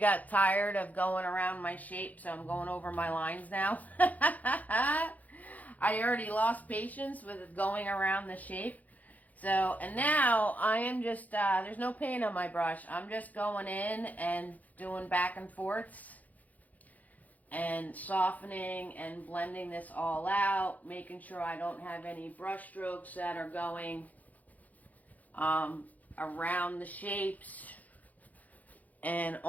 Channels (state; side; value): late; right; 0.078 ms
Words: tired of going around my shape, so I'm going over my lines now. I already lost patience with going around the shape. So, and now I am just, there's no paint on my brush. I'm just going in and doing back and forths and softening and blending this all out, making sure I don't have any brush strokes that are going around the shapes and